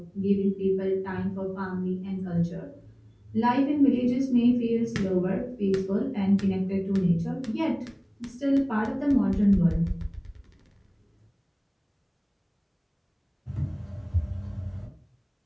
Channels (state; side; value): identical; both; correlation 1.00